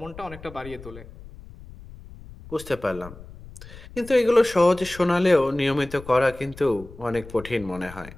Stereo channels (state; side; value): noise; left; rumble, 17 dB below the sound